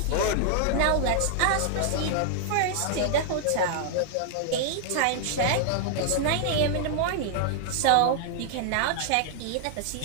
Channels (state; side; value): different; both; correlation -0.01